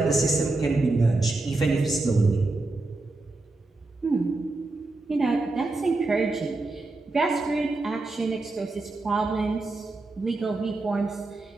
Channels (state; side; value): quieter; left; 3.2 dB